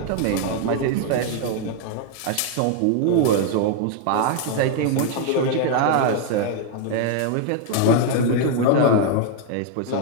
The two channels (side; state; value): both; different; correlation 0.00